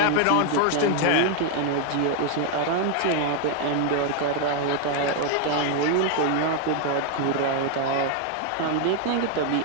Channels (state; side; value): different; both; correlation 0.00